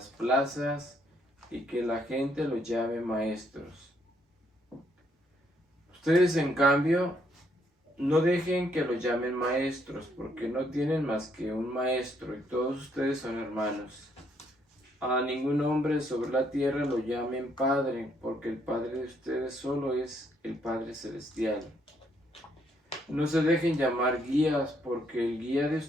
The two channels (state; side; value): normal; both; correlation 0.71